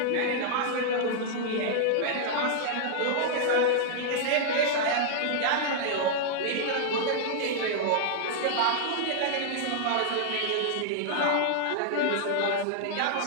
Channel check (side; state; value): both; different; correlation -0.01